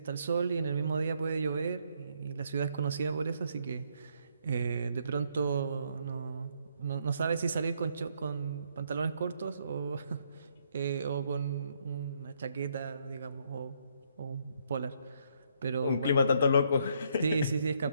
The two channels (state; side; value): inverted; both; correlation -0.72